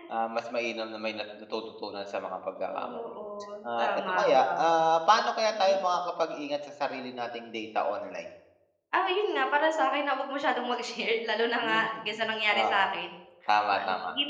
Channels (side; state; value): both; identical; correlation 1.00